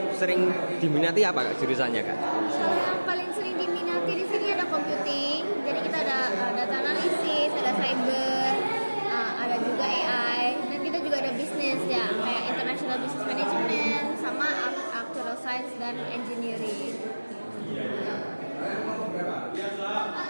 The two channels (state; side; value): inverted; both; correlation -1.00